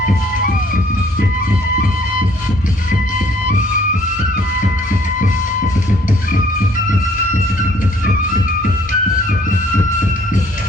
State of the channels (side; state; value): both; normal; correlation 0.60